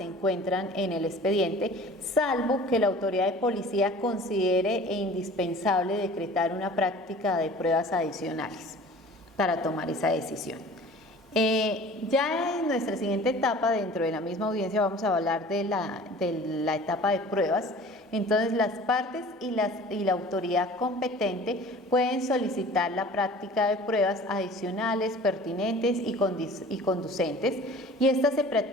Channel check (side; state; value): both; normal; correlation 0.45